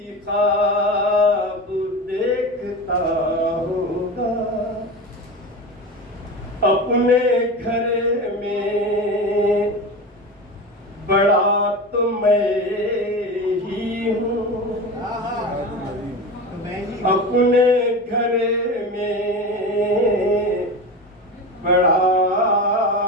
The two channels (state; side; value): normal; both; correlation 0.27